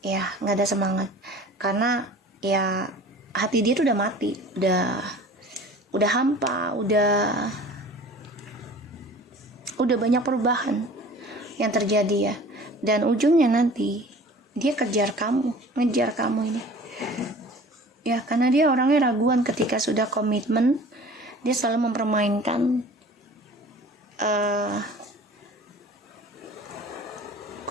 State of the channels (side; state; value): both; normal; correlation 0.44